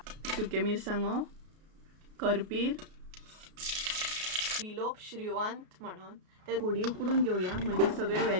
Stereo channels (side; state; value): left; late; 33 ms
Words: सुके मिरसांगो, करपीर, विलोप श्रीवंत म्हणून ते थोडी उकडून घेऊया, म्हणजे सगळे